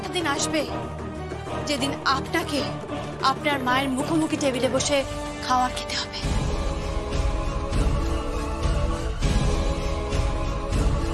দিন আসবে যেদিন আপনাকে আপনার মায়ের মুখোমুখি টেবিলে বসে খাবার খেতে হবে।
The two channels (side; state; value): both; identical; correlation 1.00